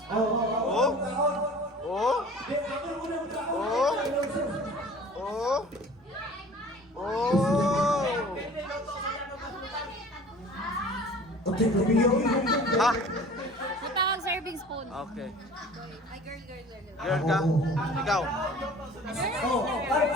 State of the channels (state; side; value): normal; both; correlation 0.45